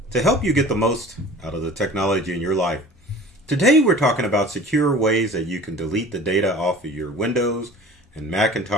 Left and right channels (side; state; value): both; normal; correlation 0.43